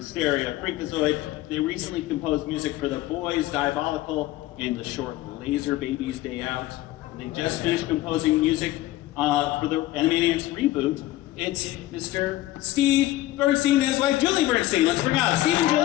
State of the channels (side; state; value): right; quieter; 16.0 dB